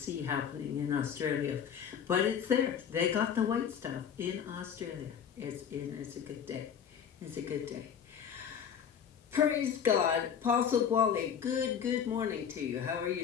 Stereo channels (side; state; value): right; quieter; 8.0 dB